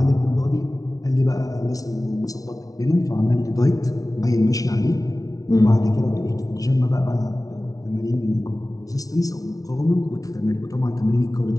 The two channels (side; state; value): right; late; 0.17 ms